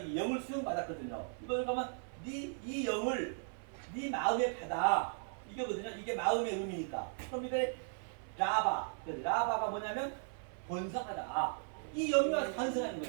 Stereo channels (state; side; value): silent; left; 53 dB below the other